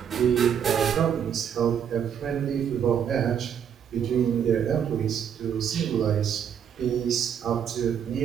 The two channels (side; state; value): left; quieter; 8.3 dB